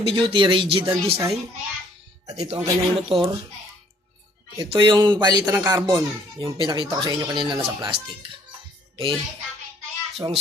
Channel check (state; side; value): normal; both; correlation 0.61